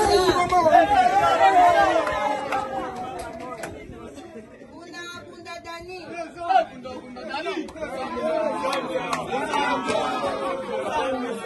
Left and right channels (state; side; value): identical; both; correlation 1.00